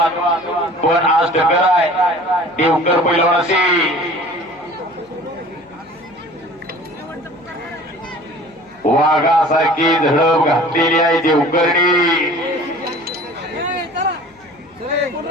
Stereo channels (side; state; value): left; noise; hum, 29 dB below the sound